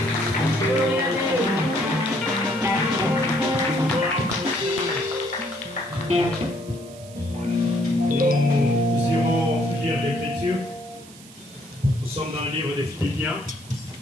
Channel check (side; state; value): right; noise; hiss, 20 dB below the sound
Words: irons lire l'Écriture. Nous sommes dans le livre des Philippiens,